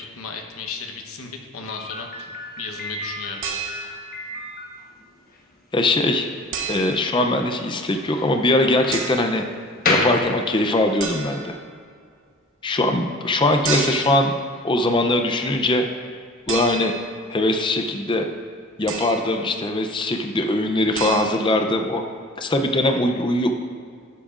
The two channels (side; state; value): both; normal; correlation 0.43